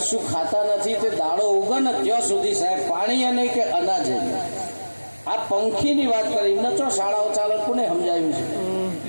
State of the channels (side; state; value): both; inverted; correlation -1.00